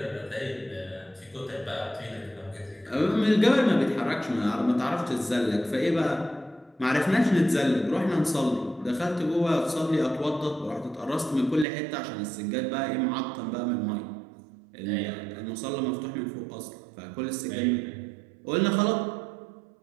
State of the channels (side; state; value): left; drops out; at 11.7 s